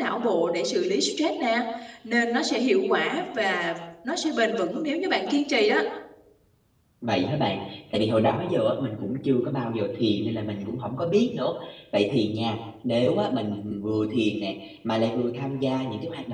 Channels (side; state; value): both; identical; correlation 1.00